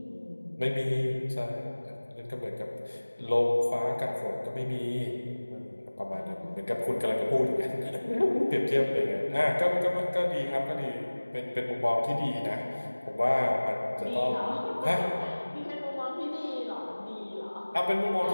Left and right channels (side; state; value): both; inverted; correlation -1.00